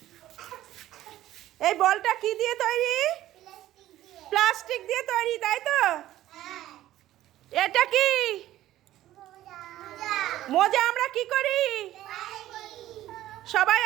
এই বলটা কি দিয়ে তৈরি? প্লাস্টিক দিয়ে তৈরি, তাই তো? এটা কি? মোজা। আমরা কি করি? সবাই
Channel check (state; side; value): quieter; left; 14.1 dB